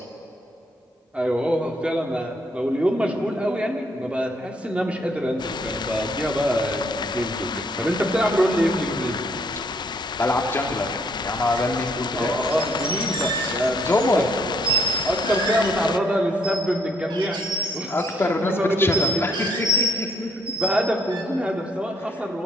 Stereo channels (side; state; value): both; normal; correlation 0.68